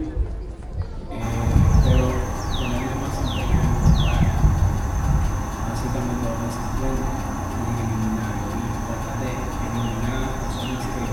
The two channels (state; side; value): identical; both; correlation 1.00